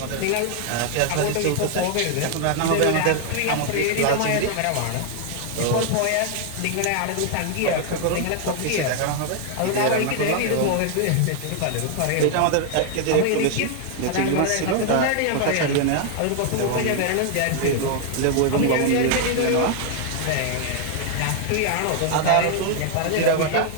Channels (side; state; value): both; different; correlation 0.00